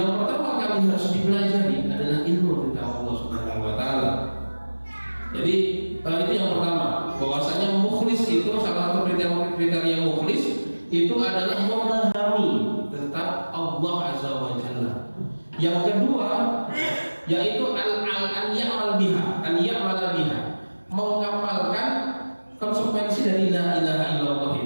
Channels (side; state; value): both; inverted; correlation -1.00